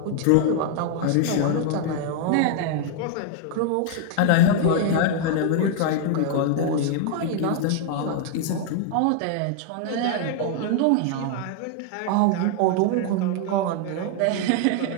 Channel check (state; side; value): different; both; correlation 0.00